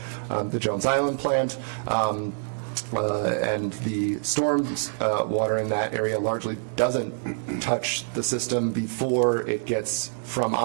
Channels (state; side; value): silent; left; digital silence